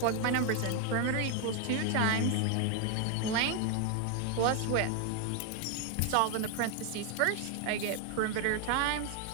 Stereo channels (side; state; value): both; different; correlation 0.01